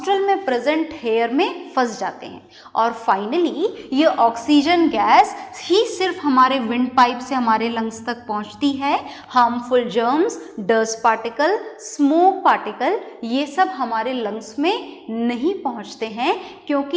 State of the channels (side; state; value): both; identical; correlation 1.00